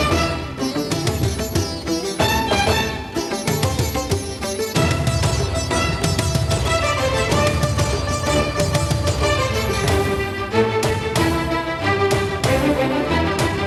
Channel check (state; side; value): identical; both; correlation 1.00